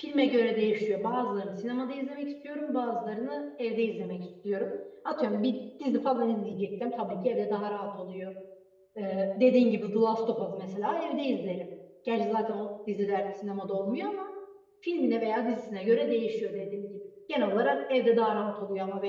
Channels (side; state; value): both; identical; correlation 1.00